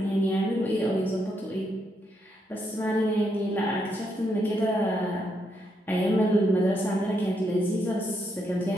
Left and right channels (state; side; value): normal; both; correlation 0.78